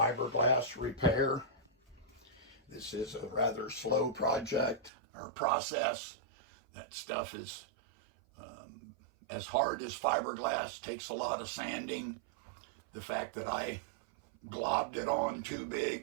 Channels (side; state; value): left; drops out; at 4.9 s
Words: repair. This is a rather slow project or process. That stuff is as hard as fiberglass, takes a lot of sanding. The fact that I globbed it on too